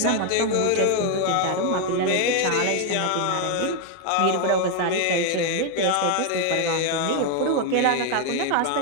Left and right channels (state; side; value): different; both; correlation 0.01